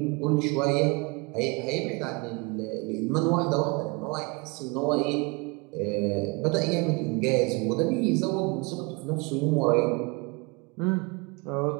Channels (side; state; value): left; quieter; 28.4 dB